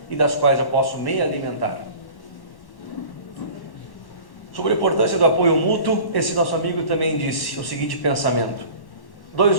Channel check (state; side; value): late; right; 1.1 ms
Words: e das quais eu posso me alimentar. Sobre a importância do apoio mútuo, esse nosso amigo também disse o seguinte pensamento: